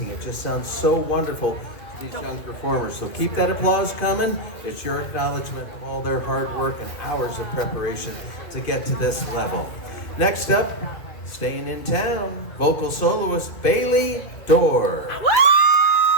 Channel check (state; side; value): late; right; 2.3 ms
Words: It just sounds so wonderful to these young performers. So keep that applause coming. It's your acknowledgement of all their hard work and hours of preparation to get to this level. Next up, staying in town, vocal soloist Bailey Dorr.